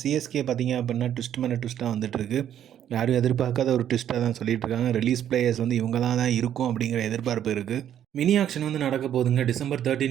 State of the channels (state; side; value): quieter; left; 10.3 dB